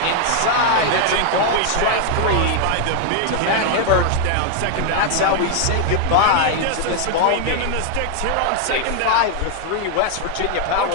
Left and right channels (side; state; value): both; different; correlation 0.00